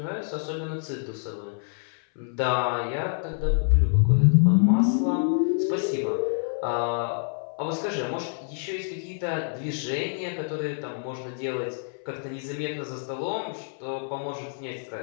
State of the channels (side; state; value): right; silent; 60 dB below the other